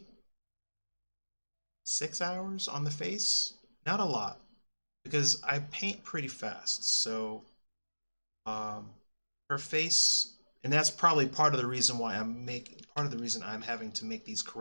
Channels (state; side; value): inverted; both; correlation -1.00